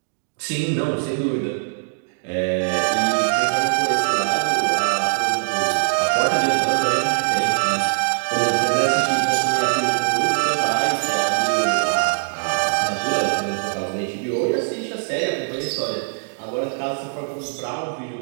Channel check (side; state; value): left; silent; digital silence